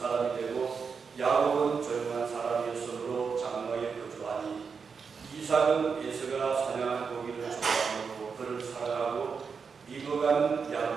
되고 야곱은 조용한 사람이었으므로 장막에 거주하니 이삭은 에서가 사냥한 고기를 좋아하므로 그를 사랑하고 리브가는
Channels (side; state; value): left; quieter; 5.7 dB